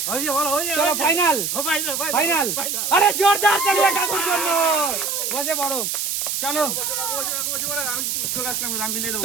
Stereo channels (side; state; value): right; noise; hiss, 1 dB below the sound